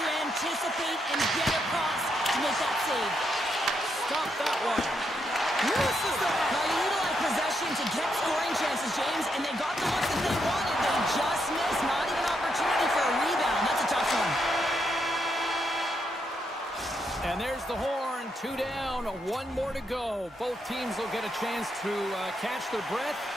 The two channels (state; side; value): normal; both; correlation 0.79